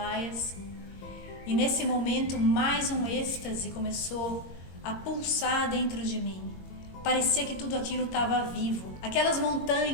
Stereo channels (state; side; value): late; right; 21 ms